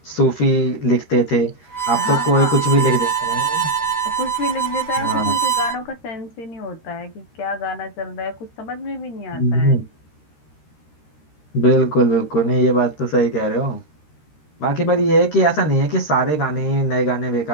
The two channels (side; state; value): right; late; 13 ms